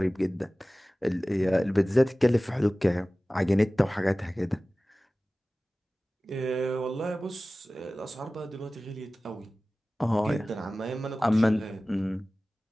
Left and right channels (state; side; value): normal; both; correlation 0.97